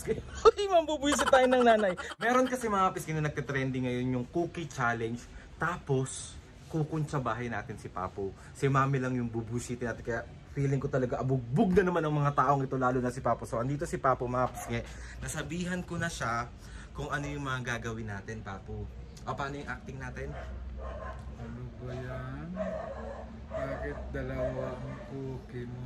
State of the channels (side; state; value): both; identical; correlation 1.00